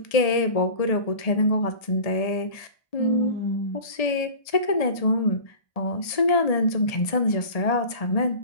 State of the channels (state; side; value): late; right; 1.7 ms